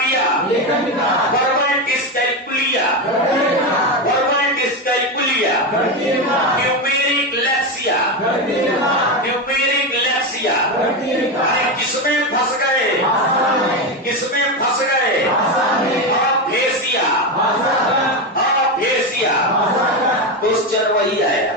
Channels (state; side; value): normal; both; correlation 0.14